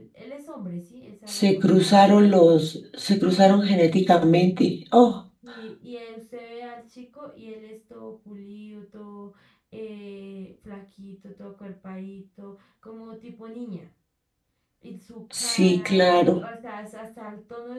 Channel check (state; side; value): identical; both; correlation 1.00